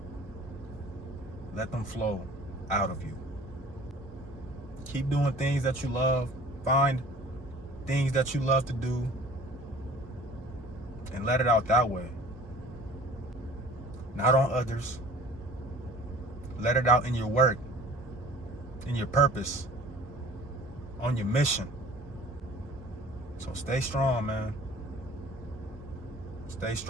Let them flow out of you. Keep doing things that you love. Find things that you love to do. And let it out that way. Not on others. Let it out in your work. In your purpose. On your mission. So stay strong, man. Stay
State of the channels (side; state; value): both; normal; correlation 0.48